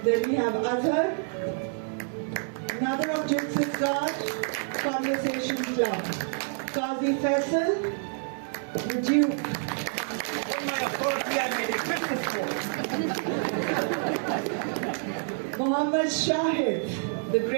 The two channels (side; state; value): left; silent; 59 dB below the other